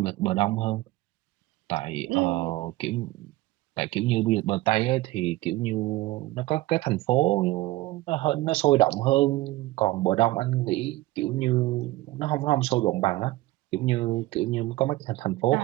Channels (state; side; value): quieter; left; 18.3 dB